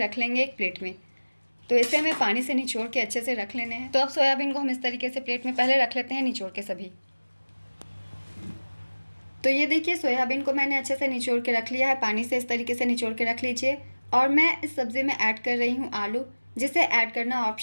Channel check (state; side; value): inverted; both; correlation -1.00